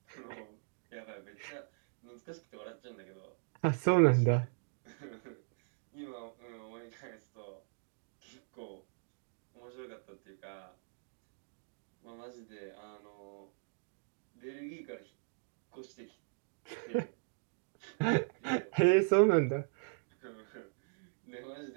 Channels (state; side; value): silent; left; digital silence